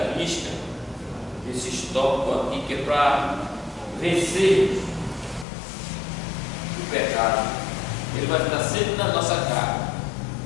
risca esse tópico aqui, que é para vencer o pecado. Ele vai estar sempre na nossa cara,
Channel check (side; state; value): right; drops out; at 5.5 s